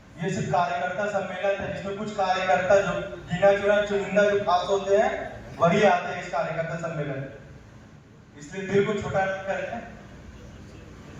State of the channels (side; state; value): both; identical; correlation 1.00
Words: ये सिर्फ कार्यकर्ता सम्मेलन था जिसमें कुछ कार्यकर्ता जो गिना चुना चुनिंदा जो खास होते हैं वही आते हैं इस कार्यकर्ता सम्मेलन, इसलिए दिल को छोटा करें।